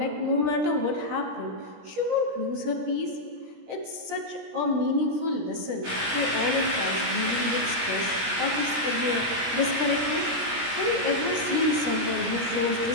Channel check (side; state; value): left; late; 17 ms